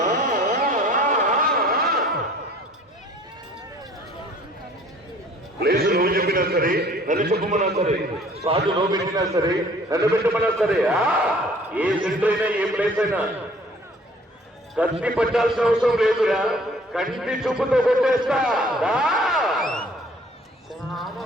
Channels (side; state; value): both; normal; correlation 0.54